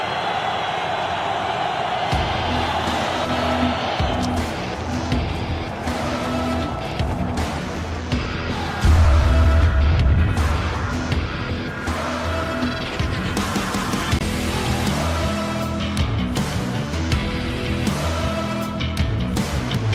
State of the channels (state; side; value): identical; both; correlation 1.00